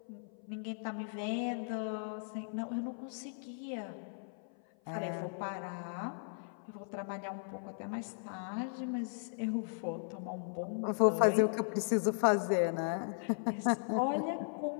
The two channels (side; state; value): right; silent; 53 dB below the other